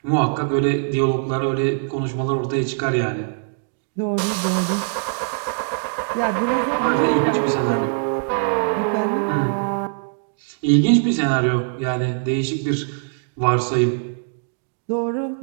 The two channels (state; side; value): silent; left; digital silence